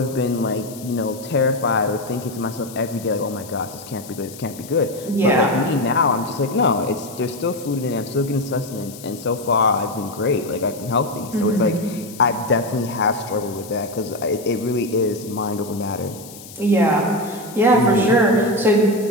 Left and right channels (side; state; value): left; noise; hiss, 17 dB below the sound